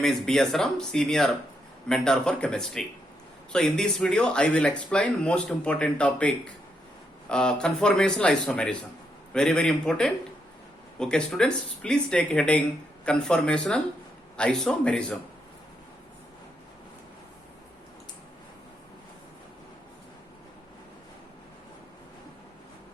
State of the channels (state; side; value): normal; both; correlation 0.79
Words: is B.S. Ram, Senior Mentor for Chemistry. So in this video, I will explain most important topic, conformational isomerism. Very, very important. Okay students, please take heading conformational isomerism.